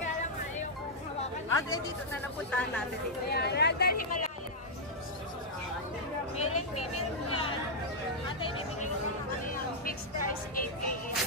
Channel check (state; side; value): normal; both; correlation -0.06